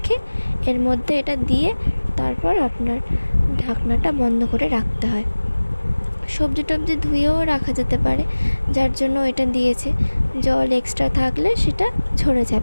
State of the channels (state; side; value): inverted; both; correlation -1.00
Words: এর মধ্যে এটা দিয়ে তারপর আপনার ঢাকনাটা বন্ধ করে রাখতে হয়। সবজি টবজি ধুয়েও রাখা যেতে পারে, যার জন্য এটা দিয়েছে। জল এক্সট্রা থাকলে সেটা ঝরে